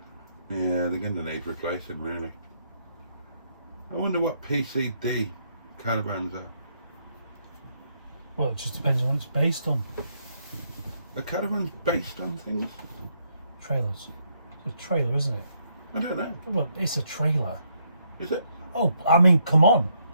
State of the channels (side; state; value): both; inverted; correlation -0.74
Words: they? Yeah, they're going to need replacing, really. I wonder what PCD caravans are. Well, it just depends on what it's based on. Are caravans based on things? Trailers. It's a trailer, isn't it? I don't know. Well, it's a trailer. Is it? Oh, I mean, come on.